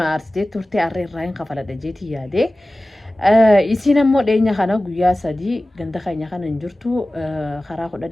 أرستي تورتي أرين راين خفلا دجيتي يا دي isiin ammoo dheenya kana guyyaa sadii ganda keenya kana hin jirtu karaa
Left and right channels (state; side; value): normal; both; correlation 0.97